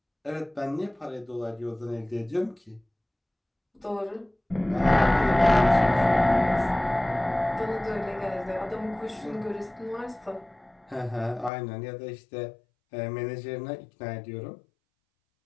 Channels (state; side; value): drops out; right; at 11.5 s